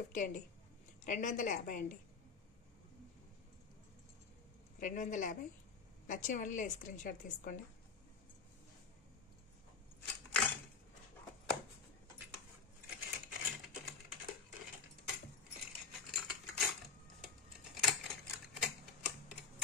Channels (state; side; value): quieter; right; 5.1 dB